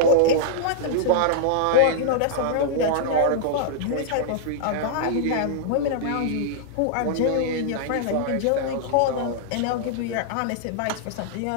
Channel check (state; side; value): different; both; correlation -0.01